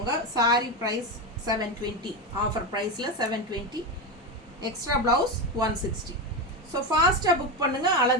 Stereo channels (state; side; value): normal; both; correlation 0.14